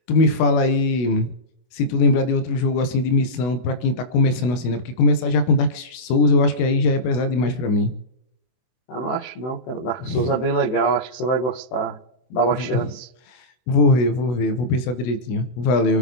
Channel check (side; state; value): right; late; 24 ms